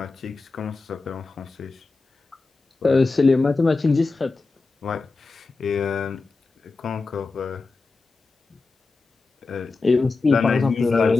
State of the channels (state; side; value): quieter; right; 3.8 dB